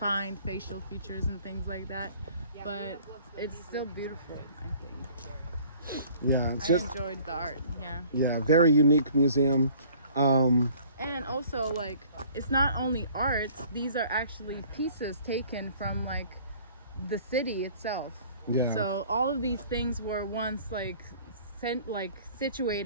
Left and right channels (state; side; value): inverted; both; correlation -0.53